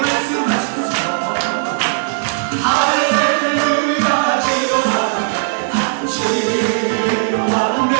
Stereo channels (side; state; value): left; silent; digital silence